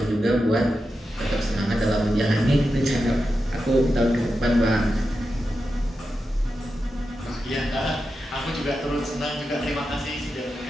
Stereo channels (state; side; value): normal; both; correlation 0.89